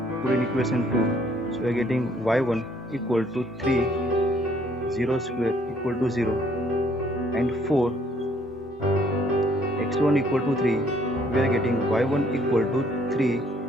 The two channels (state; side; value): normal; both; correlation 0.64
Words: Put in equation 2, so we are getting y1 equal to 3, 0 square equal to 0, and for x1 equal to 3, we are getting y1 equal to 3